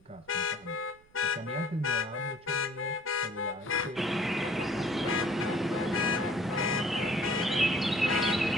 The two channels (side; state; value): right; noise; rumble, 30 dB below the sound